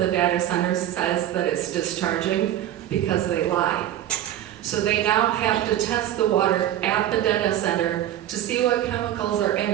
data center says that it's discharging because they lie. So they now have to test the water at the data center to see what chemicals are in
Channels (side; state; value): left; quieter; 12.1 dB